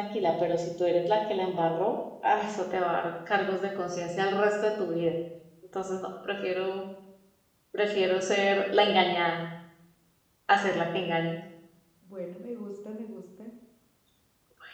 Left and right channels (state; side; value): identical; both; correlation 1.00